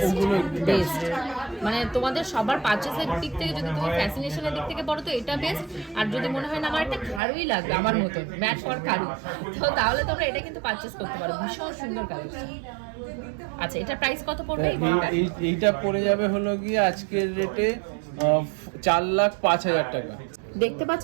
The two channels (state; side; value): drops out; left; at 7.2 s